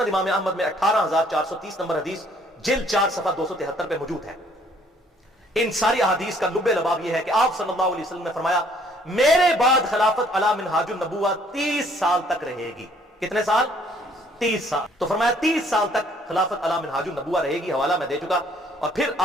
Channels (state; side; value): normal; both; correlation 0.62